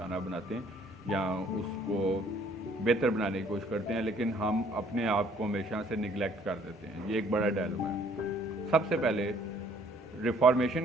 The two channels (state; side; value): normal; both; correlation 0.60